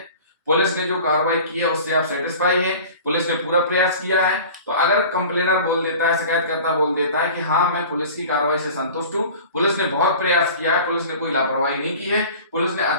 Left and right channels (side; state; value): both; inverted; correlation -0.41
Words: पुलिस ने जो कार्रवाई की है उससे आप सेटिस्फाई हैं, पुलिस ने पूरा प्रयास किया है। तो अगर कंप्लेनर बोल देता है, शिकायतकर्ता बोल देता है कि हाँ मैं पुलिस की कार्रवाई से संतुष्ट हूं, पुलिस ने बहुत प्रयास किया है, पुलिस ने कोई लापरवाही नहीं की है, पुलिस ने